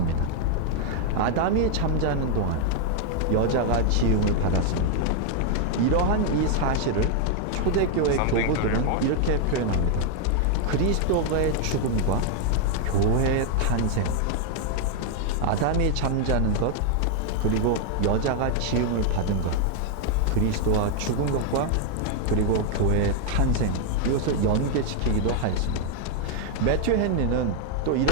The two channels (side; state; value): both; different; correlation 0.00